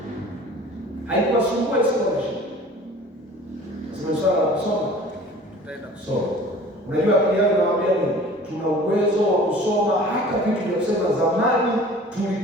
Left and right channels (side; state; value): both; normal; correlation 0.45